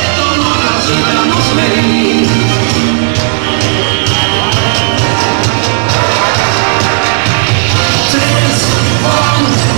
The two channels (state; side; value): silent; left; 66 dB below the other